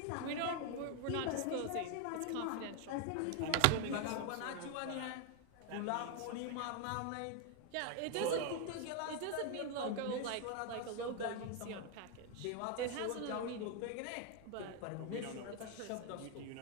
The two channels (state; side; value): different; both; correlation 0.01